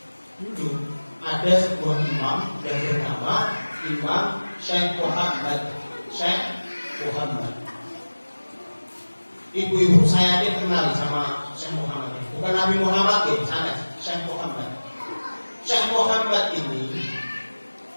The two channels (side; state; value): both; inverted; correlation -1.00